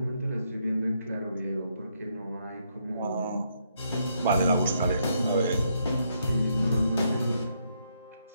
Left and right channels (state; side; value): inverted; both; correlation -0.75